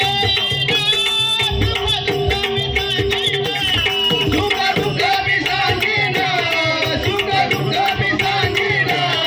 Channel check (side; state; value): both; identical; correlation 1.00